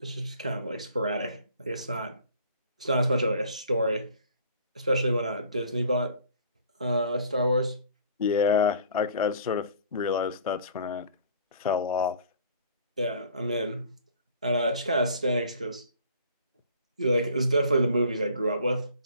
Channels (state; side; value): inverted; both; correlation -0.50